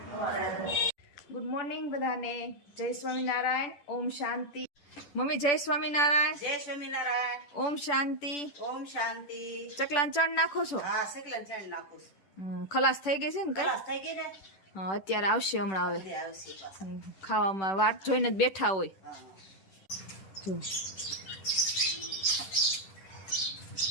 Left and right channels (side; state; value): right; late; 10 ms